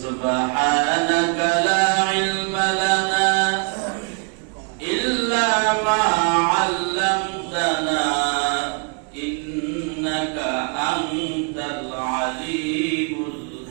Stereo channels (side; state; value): left; quieter; 39.3 dB